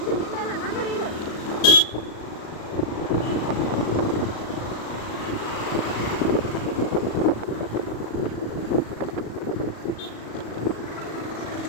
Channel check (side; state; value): right; late; 37 ms